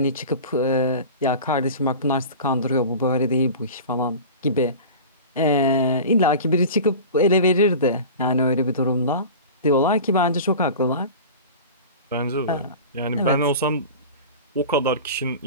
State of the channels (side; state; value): both; inverted; correlation -0.35